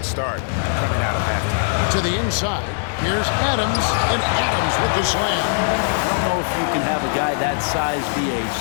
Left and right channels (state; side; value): silent; right; 60 dB below the other